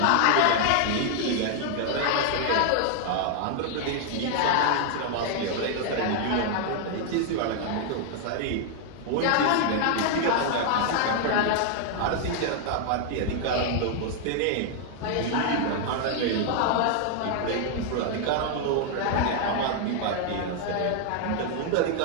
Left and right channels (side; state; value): both; different; correlation 0.00